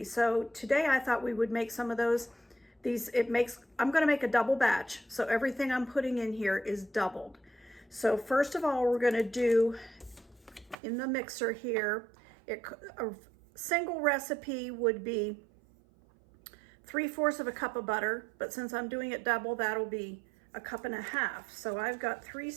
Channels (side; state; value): left; drops out; at 10.8 s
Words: So today I thought we would make some of those. I'm gonna make a double batch, so everything I'm putting in here is doubled. So first of all, we're gonna do in the mixer here, a single recipe would be 3/4 of a cup of butter, but since I'm doing it double, that'll be a cup and a half. So I've got 3